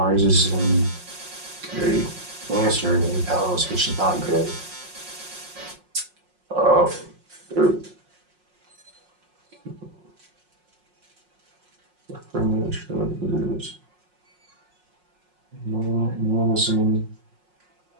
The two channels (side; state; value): left; late; 5.5 ms